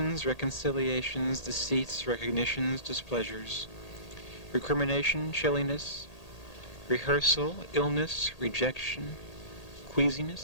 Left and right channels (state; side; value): late; right; 1.8 ms